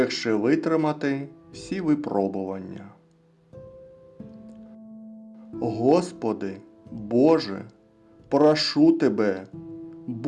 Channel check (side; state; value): both; identical; correlation 1.00